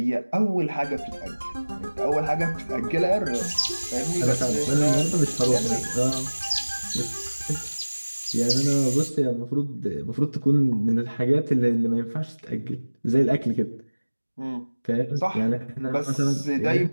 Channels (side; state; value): both; inverted; correlation -1.00